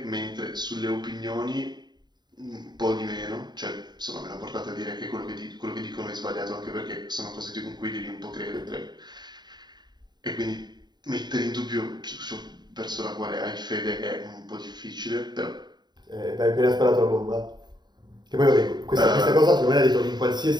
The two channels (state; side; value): late; left; 0.21 ms